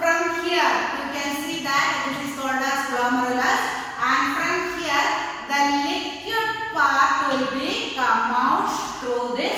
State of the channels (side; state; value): both; identical; correlation 1.00